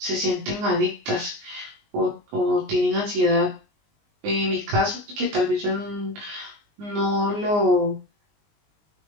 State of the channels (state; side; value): late; left; 19 ms